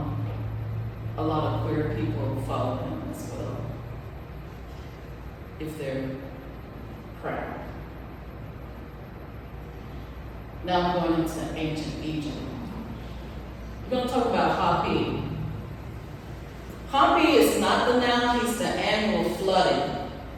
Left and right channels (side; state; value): both; identical; correlation 1.00